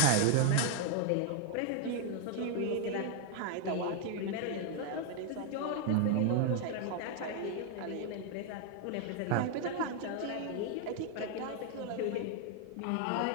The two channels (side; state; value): both; different; correlation 0.00